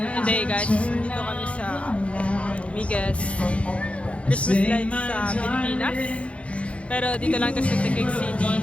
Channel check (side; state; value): right; late; 0.062 ms